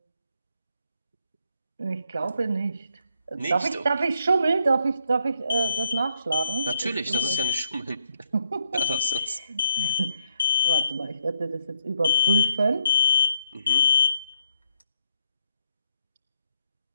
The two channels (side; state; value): both; inverted; correlation -0.74